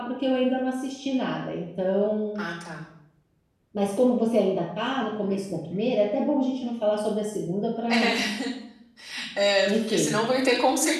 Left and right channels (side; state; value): both; identical; correlation 1.00